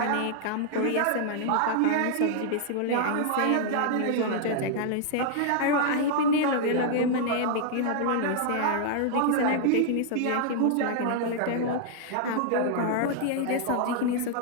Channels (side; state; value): both; different; correlation -0.01